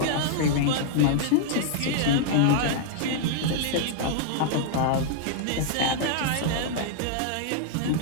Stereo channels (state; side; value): different; both; correlation -0.01